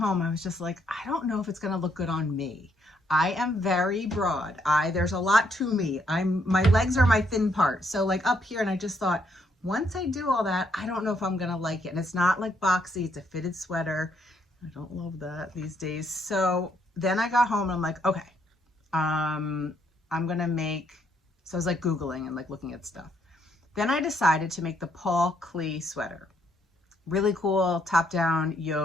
I was just like, I don't know if it's going to look good on me. I am very broad. There's a lot to me. My legs are my thin part. So like up here, and I just thought, once I do all that, I don't know if I'm going to like it. And it's not like boxy. It's a fitted sweater. I don't love that these days. So then I got home and I'm like, okay, I'm going to make, so I was like Googling and like looking at stuff. Then I decided to make the Paul Klee sweater. Really cool, top down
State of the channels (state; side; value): normal; both; correlation 0.73